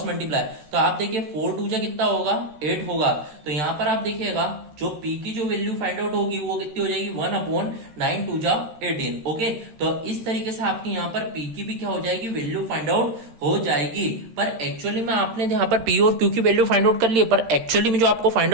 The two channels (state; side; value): late; left; 13 ms